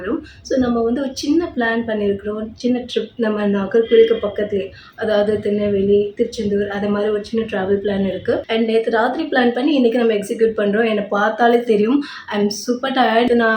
ஸோ நம்ம வந்து ஒரு சின்ன பிளான் பண்ணியிருக்கிறோம். சின்ன ட்ரிப் நம்ம நாகர்கோவிலுக்கு பக்கத்துலேயே, அதாவது திருநெல்வேலி, திருச்செந்தூர், அது மாதிரி ஒரு சின்ன ட்ராவல் பிளான் இருக்குது. அண்ட் நேற்று ராத்திரி பிளான் பண்ணி இன்றைக்கி நம்ம எக்ஸிக்யூட் பண்ணுறோம். என்னை பார்த்தாலே தெரியும், ஐ எம் சூப்பர் டயர்டு.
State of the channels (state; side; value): identical; both; correlation 1.00